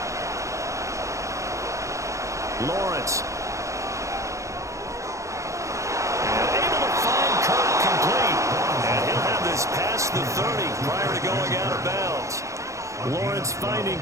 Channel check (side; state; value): left; late; 0.15 ms